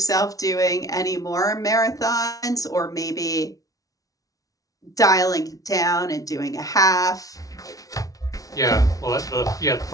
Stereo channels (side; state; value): right; late; 0.17 ms